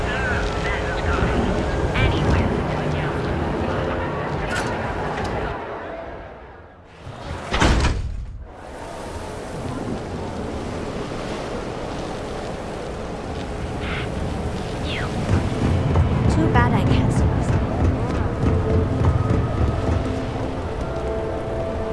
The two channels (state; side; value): identical; both; correlation 1.00